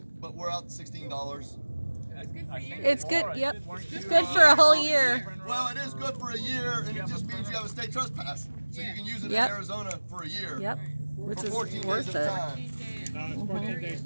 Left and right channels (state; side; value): inverted; both; correlation -1.00